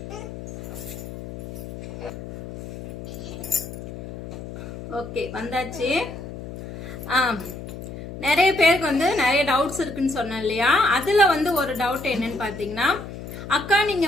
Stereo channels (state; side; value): noise; left; hum, 10 dB below the sound